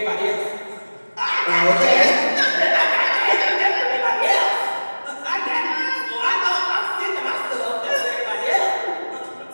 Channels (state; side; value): inverted; both; correlation -1.00